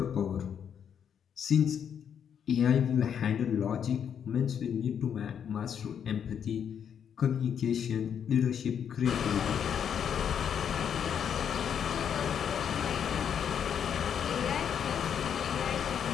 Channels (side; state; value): right; quieter; 8.2 dB